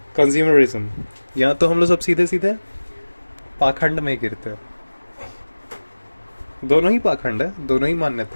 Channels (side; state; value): both; inverted; correlation -1.00